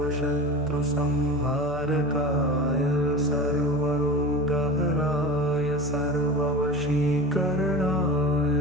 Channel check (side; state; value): both; normal; correlation 0.31